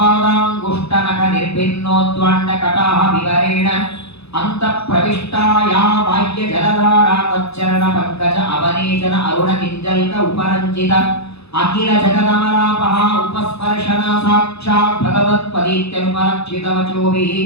ನಿರ್ಭಿನ್ನೋದ್ವಾಂಡ ಕಟಾಹ ವಿವರೇಣ ಅಂತ ಪ್ರವಿಷ್ಟಾಯಾ ಬಾಹ್ಯ ಜಲಧಾರ ತಚ್ಚರಣ ಪಂಕಜ ಅವನೇಚನ ಅರುಣ ಕಿಂಜಲ್ಕ ಉಪರಂಜಿತ ಅಖಿಲ ಜಗದಮಲಾಪಹ ಉಪಸ್ಪರ್ಶನ ಸಾಕ್ಷಾತ್ ಭಗವತ್ಪದೀತ್ಯನುಪಲಕ್ಷಿತ ವಚೋಭಿಃ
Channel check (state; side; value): late; right; 0.79 ms